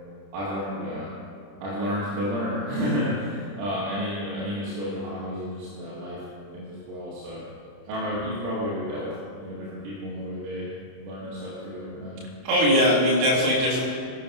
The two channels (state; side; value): late; left; 30 ms